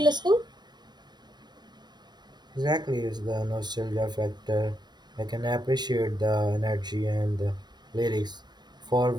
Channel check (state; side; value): late; left; 0.21 ms